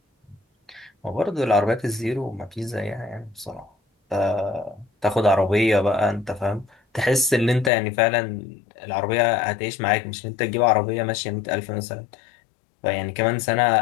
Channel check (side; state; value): right; drops out; at 7.7 s